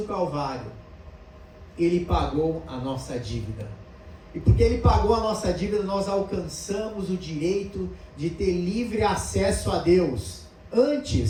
Calvário, ele pagou a nossa dívida. E porque ele pagou a nossa dívida, nós alcançamos o direito de ter livre acesso a Deus.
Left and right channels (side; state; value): both; identical; correlation 1.00